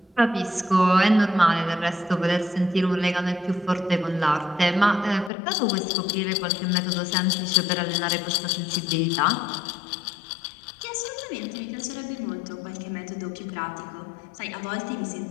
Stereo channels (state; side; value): drops out; right; at 5.3 s